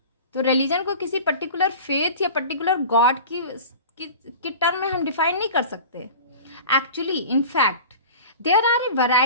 तो रिलीजन को किसी पर्टिकुलर फेथ या पर्टिकुलर गॉड की टर्म में हम डिफाइन नहीं कर सकते। Actually in fact there are a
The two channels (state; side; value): inverted; both; correlation -0.37